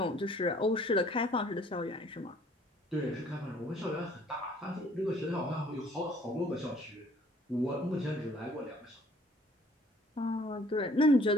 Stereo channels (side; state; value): both; normal; correlation 0.58